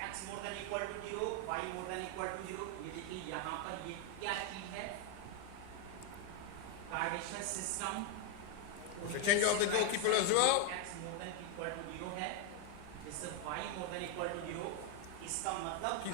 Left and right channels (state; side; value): different; both; correlation 0.01